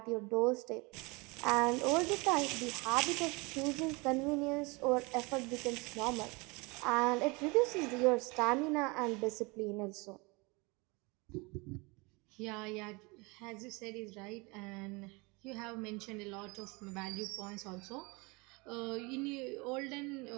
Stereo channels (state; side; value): quieter; left; 26.9 dB